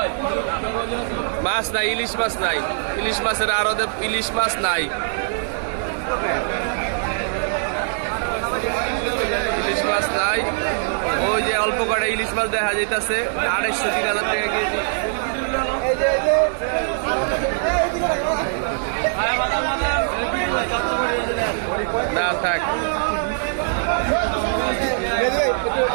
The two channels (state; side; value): silent; left; digital silence